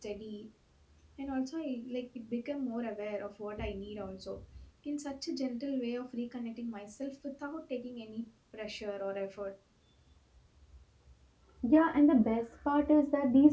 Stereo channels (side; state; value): both; identical; correlation 1.00